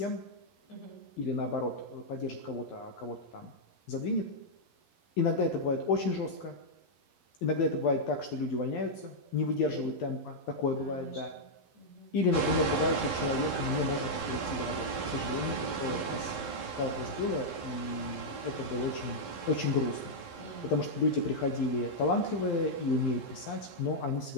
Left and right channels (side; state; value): right; late; 11 ms